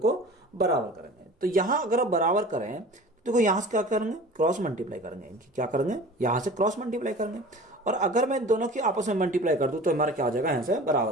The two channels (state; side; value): normal; both; correlation 0.40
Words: बराबर करेंगे। तो यहां अगर आप बराबर करें तो देखो यहां से क्या करेंगे, क्रॉस मल्टीप्लाई करेंगे, इनकी क्या करेंगे, यहां से क्रॉस मल्टीप्लाई करेंगे, और अगर मैं दोनों की आपस में मल्टीप्लाई कर दूं तो हमारा क्या हो जाएगा, यहां से बराबर